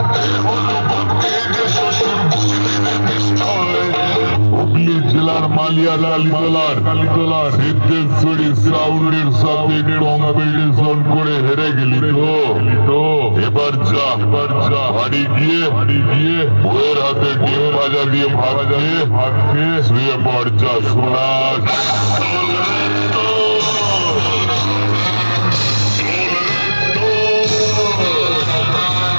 হুগলি জেলার মালিয়া কালীতলার সিদ্ধেশ্বরী সাউন্ডের সাথে কম্পিটিশন করে হেরে গেলি তো এবার যা বাড়ি গিয়ে বউয়ের হাতে ডিম ভাজা দিয়ে ভাত খেয়ে শুয়ে পড়। যা সোনা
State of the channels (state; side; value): inverted; both; correlation -1.00